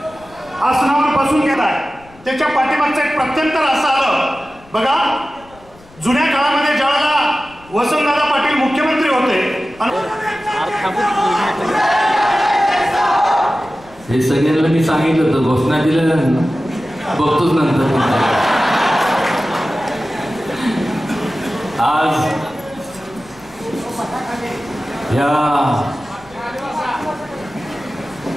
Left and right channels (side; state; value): left; noise; rumble, 25 dB below the sound